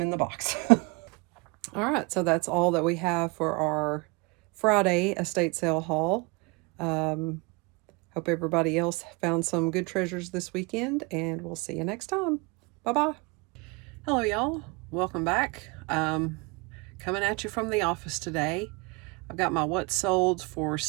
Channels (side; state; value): left; quieter; 28.2 dB